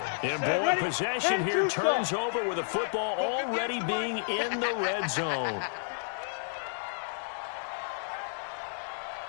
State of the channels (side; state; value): right; silent; digital silence